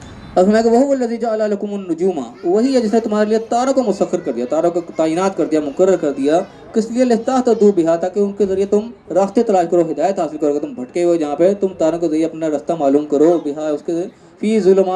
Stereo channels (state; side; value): identical; both; correlation 1.00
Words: اب فرمائے گا وہو الذی جعل لکم النجوم، وہی ہے جس نے تمہارے لیے تاروں کو مسخر کر دیا، تاروں کو تعینات کر دیا، مقرر کر دیا. کس لیے؟ لتہتدوا بہا، تاکہ ان کے ذریعے تم راستے تلاش کرو، ہدایت حاصل کرو. تم بھٹکے ہوئے جہاں پہ تم تاروں کے ذریعے اپنا راستہ معلوم کرو. بہا اس کے فی